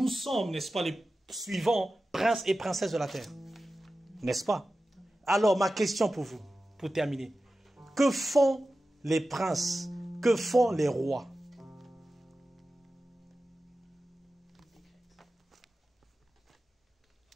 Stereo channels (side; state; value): both; normal; correlation 0.94